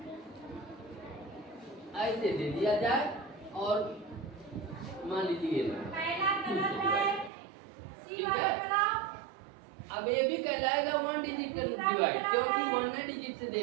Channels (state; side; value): drops out; left; at 7.3 s